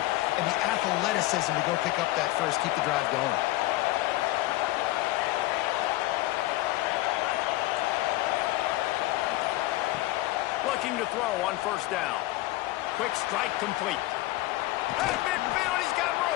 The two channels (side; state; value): right; quieter; 17.9 dB